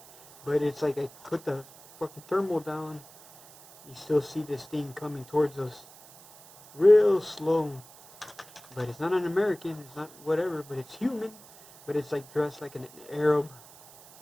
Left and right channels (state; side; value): noise; right; hiss, 22 dB below the sound